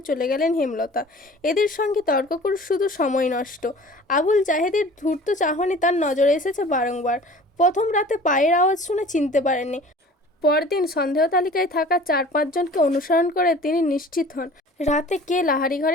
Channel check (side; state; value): both; normal; correlation 0.45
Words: চলে গেলেন হেমলতা। এদের সঙ্গে তর্ক করে শুধু সময় নষ্ট। আবুল জাহেদের ধূর্ত চাহনি তার নজরে এসেছে বারংবার। প্রথম রাতে পায়ের আওয়াজ শুনে চিনতে পারেননি। পরদিন সন্দেহ তালিকায় থাকা 4-5 জনকে অনুসরণ করে তিনি নিশ্চিত হন রাতে কে লাহারি